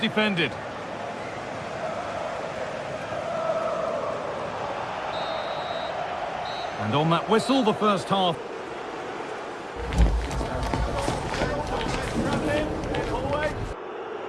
And on that whistle, the first half.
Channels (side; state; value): both; identical; correlation 1.00